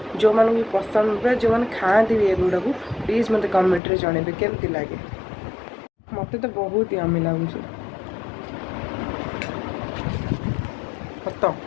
जो मानू भी पसंद जो मैंने खाती भी एगुड़ा को प्लीज मत कमेंट रे जनइबे केमती लगे मत तो बहुत ही यम्मी लगुच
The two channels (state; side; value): drops out; right; at 3.8 s